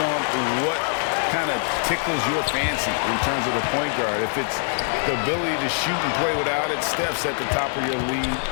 on what kind of tickles your fancy in terms of the point guard. If it's the ability to shoot and play without it, Steph's at the top of your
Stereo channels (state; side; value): silent; right; digital silence